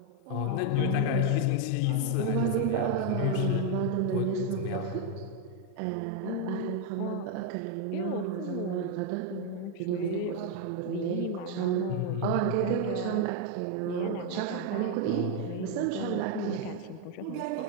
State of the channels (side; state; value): both; different; correlation 0.01